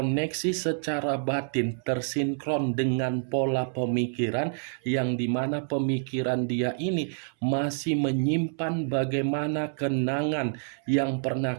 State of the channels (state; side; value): silent; left; 60 dB below the other